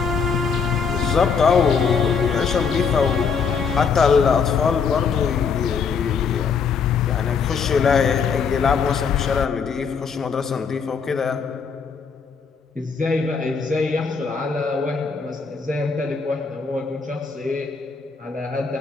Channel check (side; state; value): right; quieter; 5.8 dB